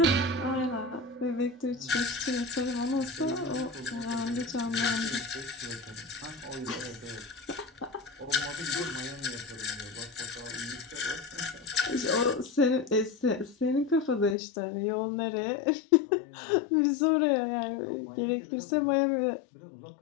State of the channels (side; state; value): right; drops out; at 14.4 s